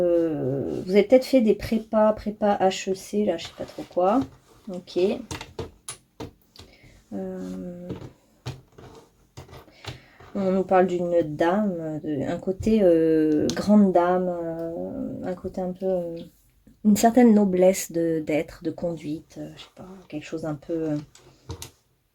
peut-être fait des prépa HEC, là, je sais pas trop quoi. Ok. On nous parle d'une dame, un côté grande dame, un côté un peu... une certaine noblesse d'être, de conduite, je sais pas, quelque chose un peu...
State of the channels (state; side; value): identical; both; correlation 1.00